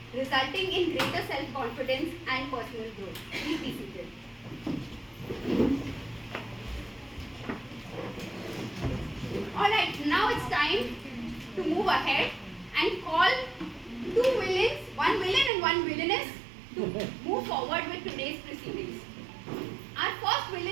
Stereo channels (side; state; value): left; drops out; at 15.5 s